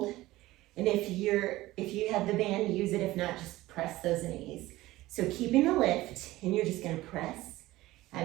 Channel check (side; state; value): left; quieter; 17.6 dB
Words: and if you have the band, use it. If not, just press those knees. So keeping the lift, and you're just gonna press